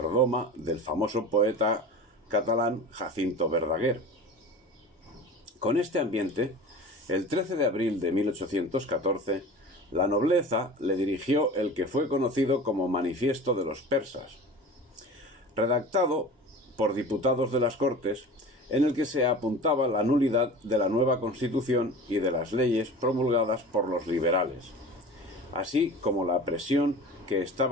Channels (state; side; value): normal; both; correlation 0.36